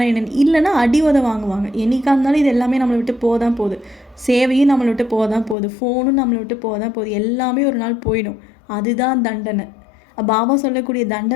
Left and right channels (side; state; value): right; drops out; at 5.6 s